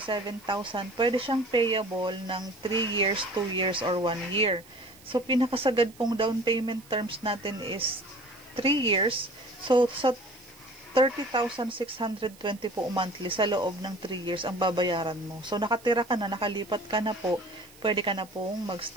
Pwede siyang payable ng 3 years, 2 years, or 1 year. So, pinakasagad pong down payment terms natin is 3 years. So, sa 30,620 po monthly sa loob ng 3 years ang babayaran mo. So, nakatira ka na, nakalipat ka na po, pwede ka na pong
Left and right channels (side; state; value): right; noise; hiss, 24 dB below the sound